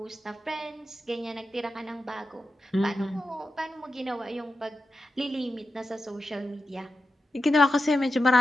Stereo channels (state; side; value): normal; both; correlation 0.89